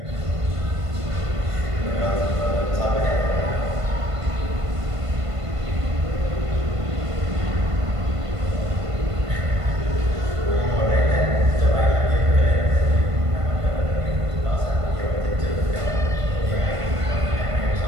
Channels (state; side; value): late; left; 1.5 ms